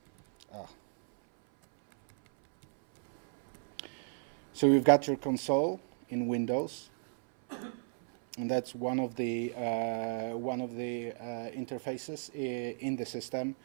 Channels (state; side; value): silent; left; 55 dB below the other